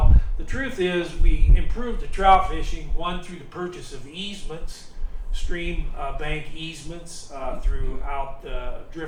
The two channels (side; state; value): both; identical; correlation 1.00